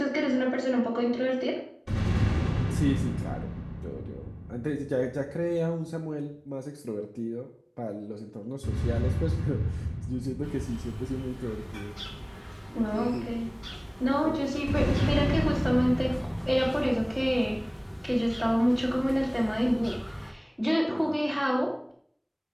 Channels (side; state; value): both; identical; correlation 1.00